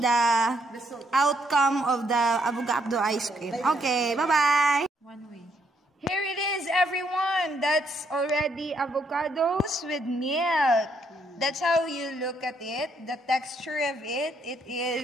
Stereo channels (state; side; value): normal; both; correlation 0.73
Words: outcome of the avocado ice cream. Okay, bye-bye. One way. Here it is, everyone. That's already avocados with milk. That's how you look at it. The texture of it, it